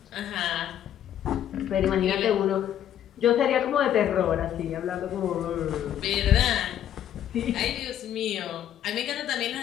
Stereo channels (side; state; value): right; quieter; 10.7 dB